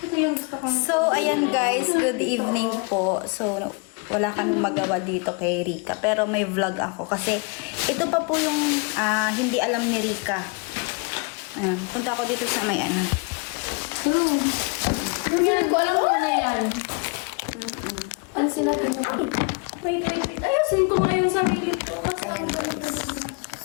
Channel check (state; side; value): quieter; right; 32.3 dB